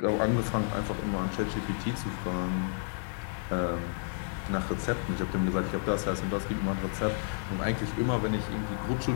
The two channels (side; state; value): right; silent; digital silence